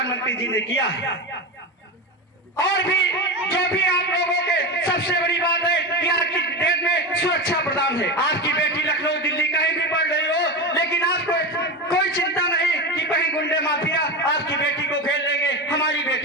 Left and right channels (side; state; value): both; normal; correlation 0.20